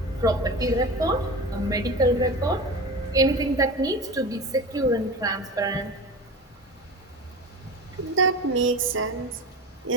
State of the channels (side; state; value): both; normal; correlation 0.29